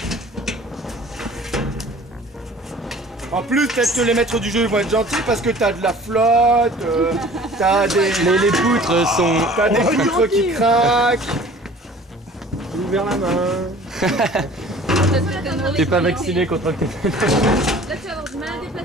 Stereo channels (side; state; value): both; normal; correlation 0.47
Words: En plus, peut-être que les maîtres du jeu vont être gentils parce que t'as de la flotte, t'as des... Les poutres sont. T'as des poutres qui craquent. J'ai ouvert la main. T'es pas vacciné contre le tétane. Là, tu vas avoir du mal à